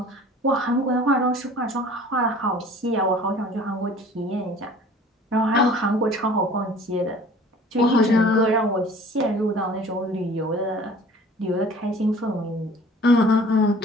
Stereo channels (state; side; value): normal; both; correlation 0.48